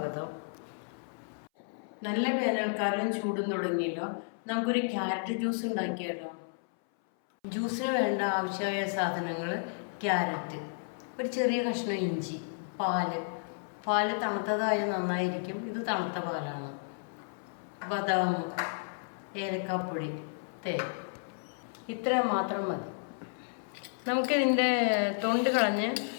നല്ല വേനൽക്കാലം ചൂടും തുടങ്ങിയല്ലോ. നമുക്കൊരു ക്യാരറ്റ് ജ്യൂസ് ഉണ്ടാക്കിയാലോ. ജ്യൂസിന് വേണ്ട ആവശ്യമായ സാധനങ്ങൾ: ക്യാരറ്റ്, ഒരു ചെറിയ കഷ്ണം ഇഞ്ചി, പാല് തണുത്തതായ നന്നായിരിക്കും. ഇത് തണുത്ത പാലാണ്. ബദാം, ഏലക്കാപ്പൊടി, തേൻ, ഇത്ര മാത്രം മതി. നമുക്കിതിൻ്റെ തൊണ്ട് കളഞ്ഞ്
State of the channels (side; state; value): right; silent; 56 dB below the other